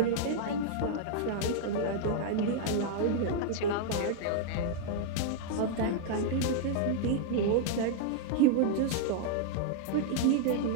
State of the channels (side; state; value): both; different; correlation -0.01